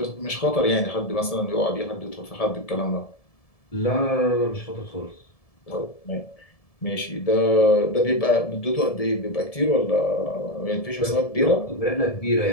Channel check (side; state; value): right; late; 1.7 ms